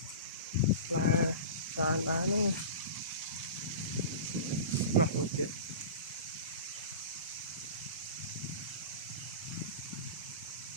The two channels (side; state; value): both; inverted; correlation -0.32